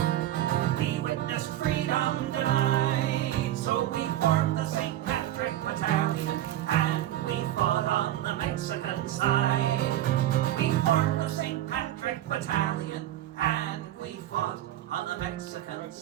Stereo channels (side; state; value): left; quieter; 13.3 dB